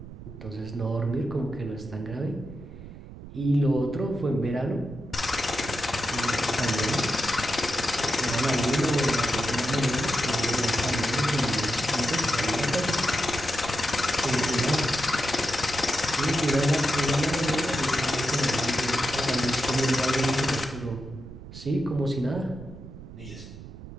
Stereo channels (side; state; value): right; noise; rumble, 14 dB below the sound